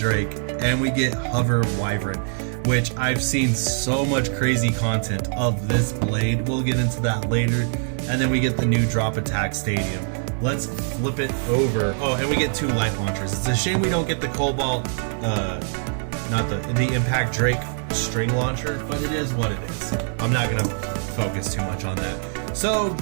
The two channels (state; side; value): silent; left; 63 dB below the other